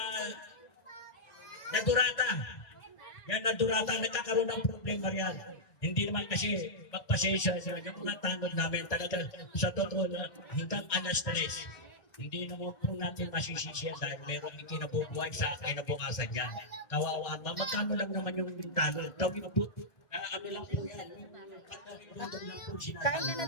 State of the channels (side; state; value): right; late; 1.6 ms